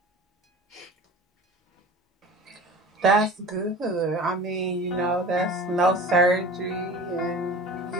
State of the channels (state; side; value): normal; both; correlation 0.39